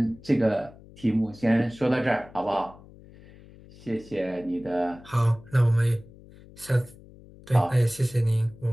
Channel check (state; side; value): noise; left; hum, 22 dB below the sound